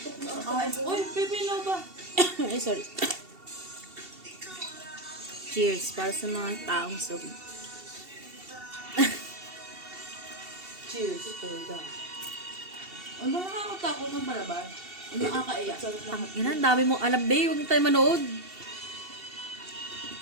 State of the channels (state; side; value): late; left; 2.7 ms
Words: na ako. Uy, pipino ba? Ay, sorry. Cheers para sa mga taong sob. Cheers. Tulga. Ano ba nakakatakot ng palabas? Ano nakakaiyak? Ang ina, ang dami mong alam, babe. Huwag na tayo manood.